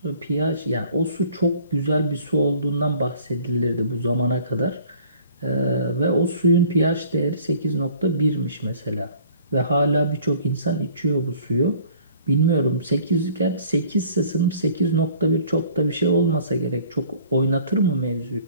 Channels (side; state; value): both; inverted; correlation -0.53